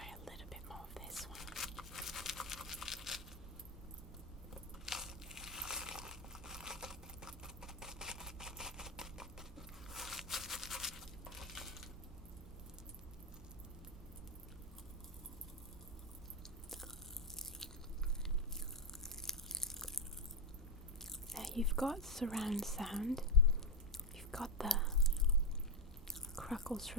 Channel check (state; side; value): normal; both; correlation 0.04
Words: little bit more of this one. Now you've got surround sound, you've got the crackles